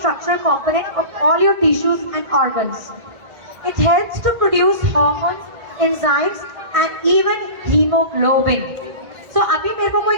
component of all your tissues and organs. It helps to produce hormones, enzymes and even hemoglobin. So अभी मेरे को कोई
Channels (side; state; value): left; late; 1.6 ms